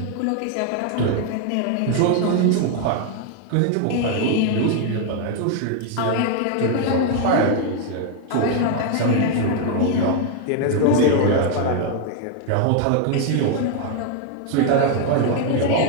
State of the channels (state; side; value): different; both; correlation 0.00